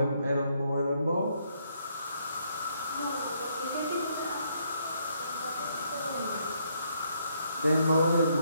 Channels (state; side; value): inverted; both; correlation -0.72